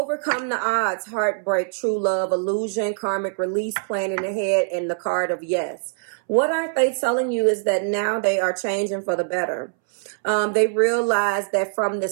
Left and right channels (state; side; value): silent; left; 63 dB below the other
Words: the odds, heartbreak, true love, illusion, karmic release, planning ahead, and the card of yes. What aren't they telling you is that now they are changing for the better. They realize that from